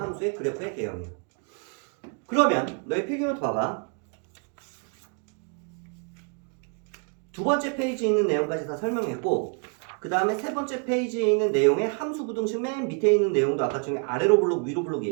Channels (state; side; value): quieter; left; 39.1 dB